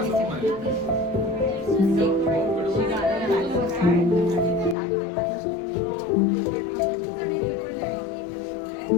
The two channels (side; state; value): right; drops out; at 4.8 s